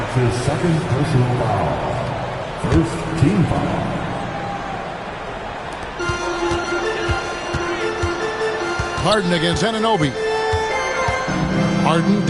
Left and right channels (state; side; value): identical; both; correlation 1.00